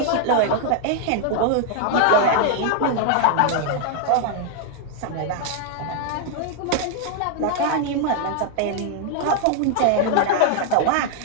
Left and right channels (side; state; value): both; different; correlation 0.00